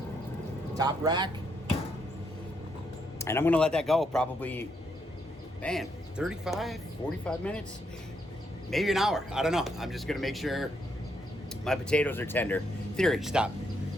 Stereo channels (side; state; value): both; normal; correlation 0.76